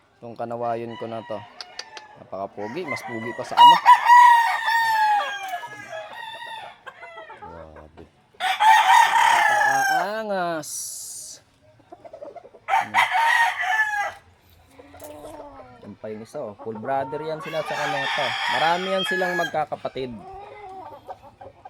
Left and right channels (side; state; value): both; identical; correlation 1.00